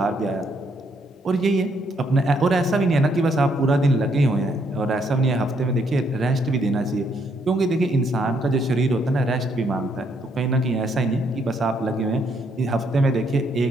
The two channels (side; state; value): both; normal; correlation 0.72